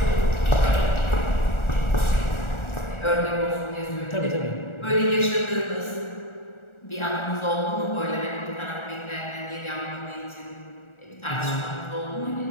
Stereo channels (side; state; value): right; late; 1.4 ms